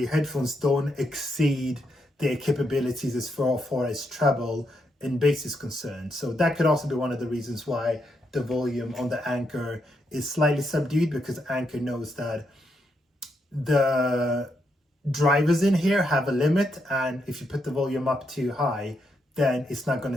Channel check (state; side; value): normal; both; correlation 0.80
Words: headphones don't exceed their capabilities as far as treble and bass is concerned. So that could also be one of the reasons why the volume on the Anker is slightly subdued, because Anker knows that the drivers in here have a limit, and if you put the volume up too high, then it's not going